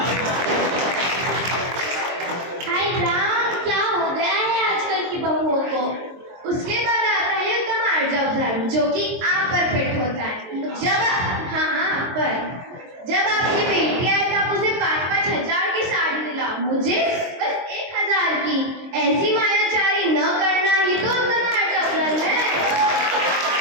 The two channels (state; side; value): late; left; 23 ms